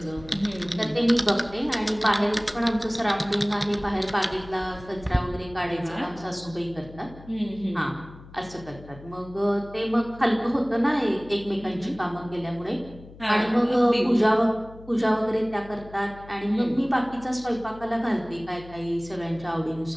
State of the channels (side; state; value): left; noise; hum, 19 dB below the sound